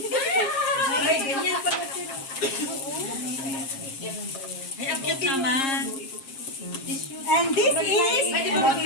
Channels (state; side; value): late; right; 7.4 ms